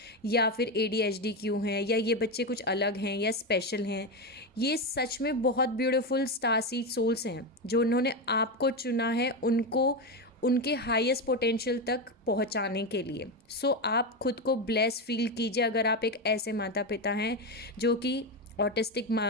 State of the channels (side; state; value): both; normal; correlation 0.13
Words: या फिर ADHD क्यों है, या ये बच्चे कुछ अलग हैं या स्पेशल हैं, ये सच में बहुत ब्यूटीफुल स्टार सीड सोल्स हैं जो उन्होंने आपको चुना है उनको उनके हाईएस्ट पोटेंशियल तक पहुंचाने के लिए। सो आप खुद को ब्लेस फील कीजिए अगर आप एक ऐसे माता पिता हैं जो कि ऑटिस्टिक